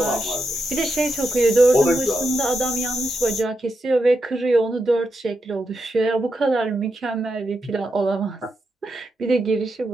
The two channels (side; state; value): both; normal; correlation 0.85